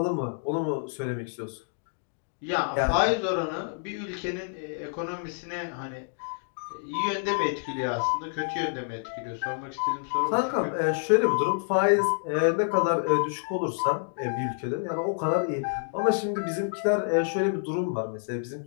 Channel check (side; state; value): right; silent; digital silence